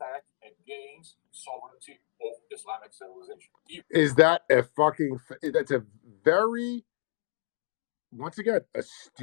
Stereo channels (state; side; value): silent; right; digital silence